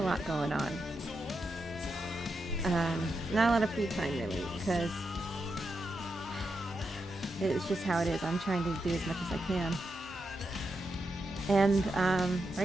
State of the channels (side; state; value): both; normal; correlation 0.85